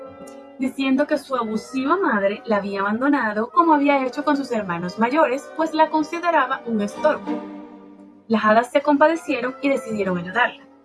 diciendo que su abusiva madre la había abandonado como había hecho con sus hermanos mayores, pues la consideraba un estorbo. Las hadas se compadecieron y decidieron ayudarla,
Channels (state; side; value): identical; both; correlation 1.00